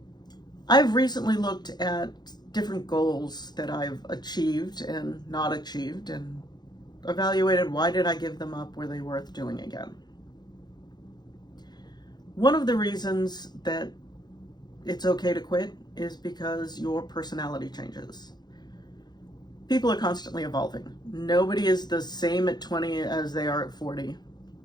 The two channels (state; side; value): late; right; 0.20 ms